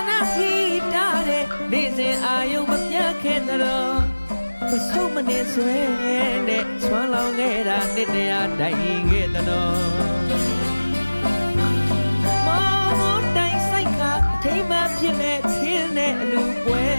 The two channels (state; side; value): inverted; both; correlation -1.00